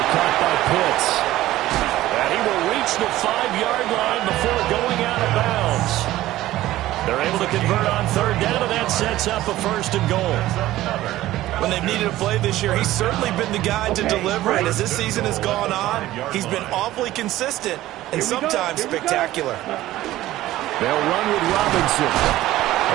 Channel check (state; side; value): quieter; left; 15.5 dB